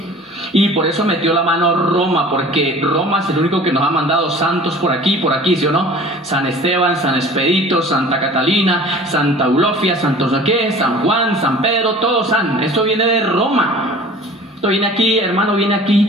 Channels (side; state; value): both; normal; correlation 0.44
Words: Y por eso metió la mano Roma, porque Roma es el único que nos ha mandado santos por aquí, ¿sí o no? San Esteban, San Expedito, Santa Catalina, Santa Eulofia, Santo Soqué, San Juan, San Pedro, todos san. Esto viene de Roma. Esto viene aquí, hermano, viene aquí